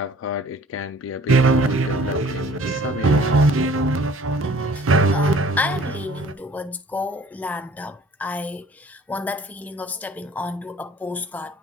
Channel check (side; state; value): both; normal; correlation 0.52